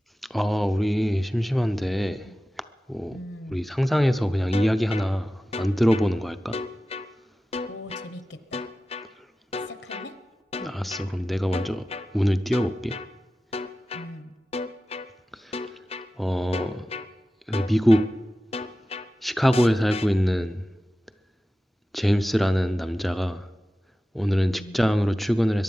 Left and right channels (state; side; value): normal; both; correlation 0.94